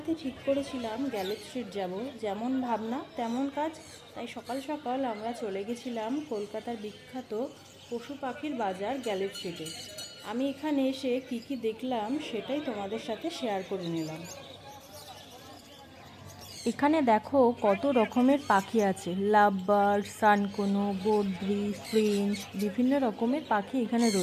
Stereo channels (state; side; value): identical; both; correlation 1.00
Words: ঠিক করেছিলাম গ্যালেট স্ট্রিট যাব, যেমন ভাবনা তেমন কাজ। তাই সকাল সকাল আমরা চলে গেছিলাম কলকাতার বিখ্যাত পশু পাখির বাজার গ্যালেট স্ট্রিটে। আমি এখানে এসে কি দেখলাম সেটাই তোমাদের সাথে শেয়ার করে নিলাম। এখানে দেখো কত রকমের পাখি আছে, লাভ বার্ড, সানকোনো, বদ্রি, ফ্রিঞ্চ, বিভিন্ন রকমের পাখি এখানে